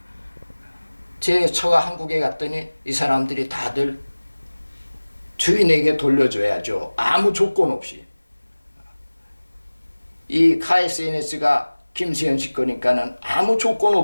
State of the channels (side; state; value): both; inverted; correlation -1.00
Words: 제 처가 한국에 갔더니 이 사람들이 다들 주인에게 돌려줘야죠. 아무 조건 없이. 이 KSNS가 김세현 씨 거니까는 아무 조건